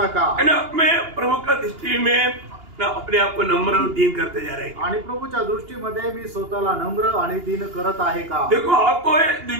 है ना? मैं प्रभु का दृष्टि में ना अपने आप को नम्र और दीन करते जा रहे हैं। आणि प्रभूच्या दृष्टीमध्ये मी स्वतःला नम्र आणि दीन करत आहे का? देखो, आपको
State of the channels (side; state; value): left; late; 2.8 ms